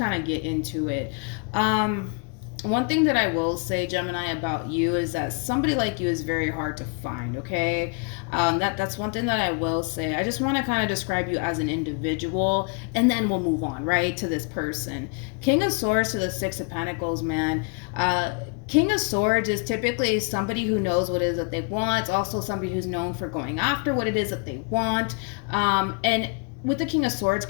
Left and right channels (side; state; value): right; quieter; 36.1 dB